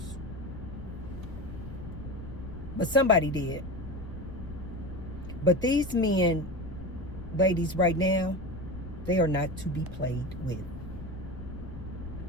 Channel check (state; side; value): noise; left; rumble, 11 dB below the sound